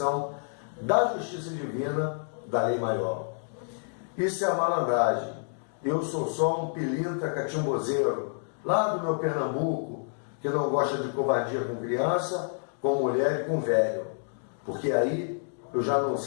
da justiça divina, da lei maior. Isso é a malandragem. Eu sou só um pilintra catimbozeiro, lá do meu Pernambuco, que não gosta de covardia com criança, com mulher e com velho. Porque aí eu já não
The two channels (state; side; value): silent; right; digital silence